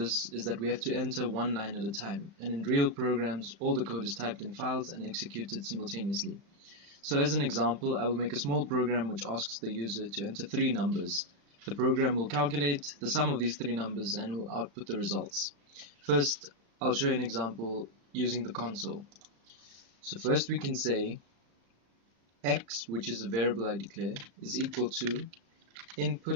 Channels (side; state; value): left; late; 35 ms